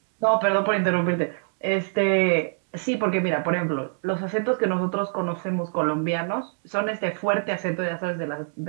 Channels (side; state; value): left; silent; digital silence